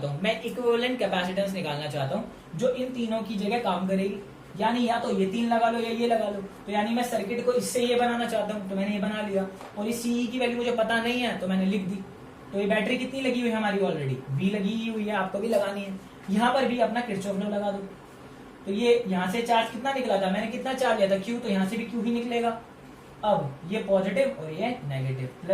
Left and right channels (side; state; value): both; identical; correlation 1.00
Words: हूं, मैं इक्विवेलेंट कैपेसिटेंस निकालना चाहता हूं जो इन तीनों की जगह काम करेगी। यानी या तो ये 3 लगा लो या ये लगा लो। तो यानी मैं सर्किट को इससे ये बनाना चाहता हूं, तो मैंने ये बना लिया। और इस सीई की वैल्यू मुझे पता नहीं है तो मैंने लिख दी। तो ये बैटरी कितनी लगी हुई है हमारी, ऑलरेडी V लगी हुई है, आपको भी लगानी है। यहाँ पर भी अपना किरचॉफ लॉ लगा दो। तो ये यहाँ से चार्ज कितना निकला था, मैंने कितना चार्ज लिया था, Q, तो यहाँ से भी Q ही निकलेगा। अब ये पॉजिटिव और ये negative,